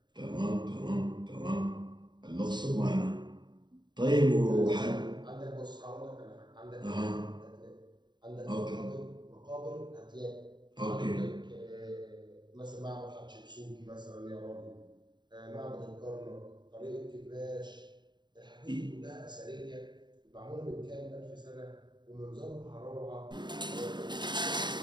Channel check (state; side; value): late; left; 0.22 ms